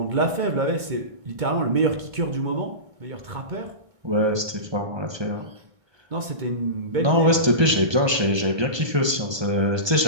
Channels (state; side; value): late; left; 1.2 ms